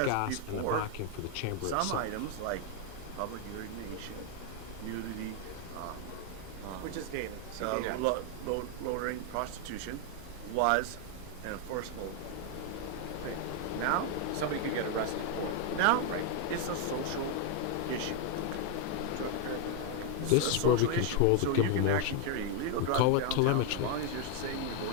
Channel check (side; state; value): both; different; correlation 0.00